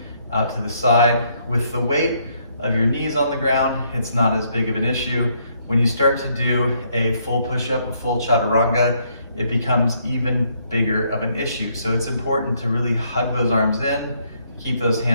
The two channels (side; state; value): both; inverted; correlation -0.71